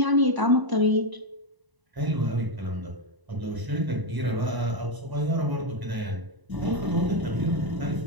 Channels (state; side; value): late; left; 1.0 ms